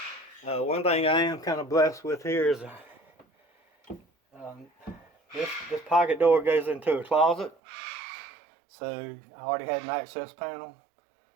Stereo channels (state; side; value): drops out; left; at 7.6 s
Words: One thing I am kind of blessed with here is this pocket door goes into a closet, so I already had an access panel,